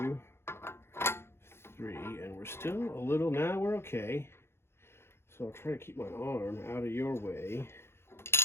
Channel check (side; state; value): right; late; 0.12 ms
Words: 3, and we're still a little, now we're okay. So I'll try to keep my arm out of your way.